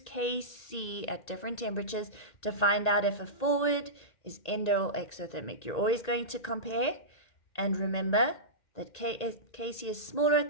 at different temperatures to find out if a forward is endo or exothermic. You're always going to compare, and remember that Kc is smaller at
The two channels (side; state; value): right; late; 1.9 ms